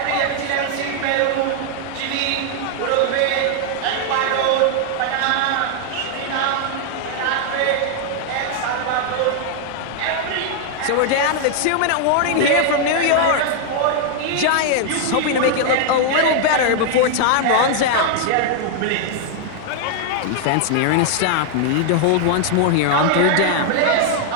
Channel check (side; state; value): both; different; correlation 0.00